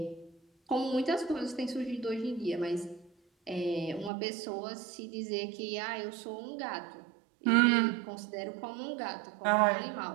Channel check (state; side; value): drops out; left; at 4.1 s